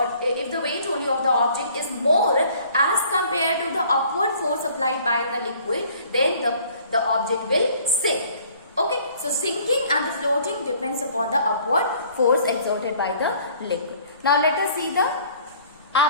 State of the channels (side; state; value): both; inverted; correlation -0.55